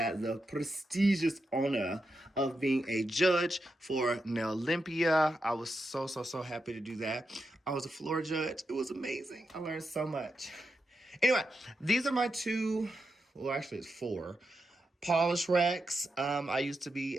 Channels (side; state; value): both; normal; correlation 0.86